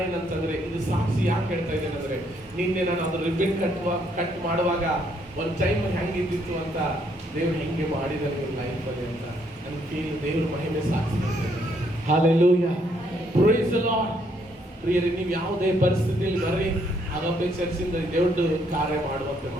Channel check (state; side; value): normal; both; correlation 0.71